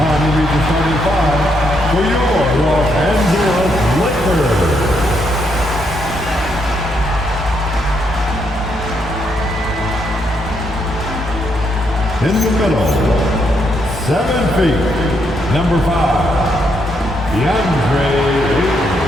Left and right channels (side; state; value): both; normal; correlation 0.76